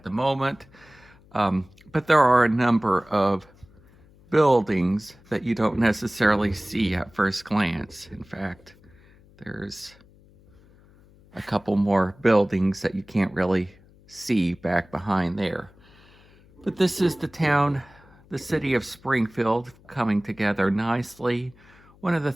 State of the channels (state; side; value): noise; left; hum, 27 dB below the sound